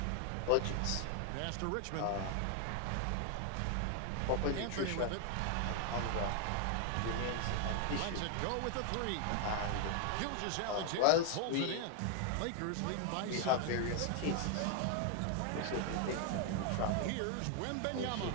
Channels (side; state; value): both; different; correlation 0.00